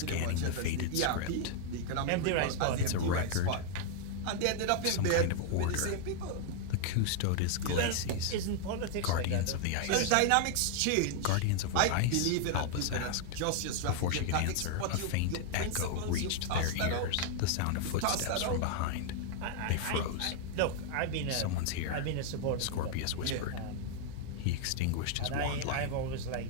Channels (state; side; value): different; both; correlation 0.00